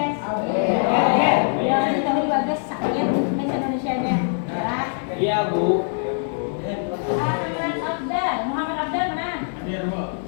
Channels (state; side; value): silent; right; digital silence